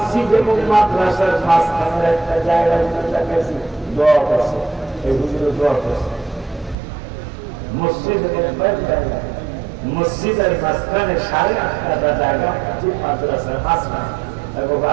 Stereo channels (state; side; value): drops out; left; at 6.8 s